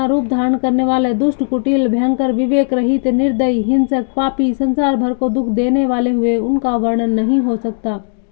रूप धारण करने वाले दुष्ट, कुटिल, भयंकर, विवेक रहित, निर्दयी, हिंसक, पापी, संसार भर को दुख देने वाले हुए। उनका वर्णन नहीं हो सकता।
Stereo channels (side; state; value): right; silent; digital silence